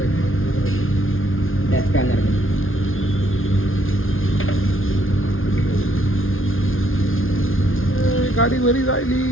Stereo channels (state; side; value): late; right; 0.59 ms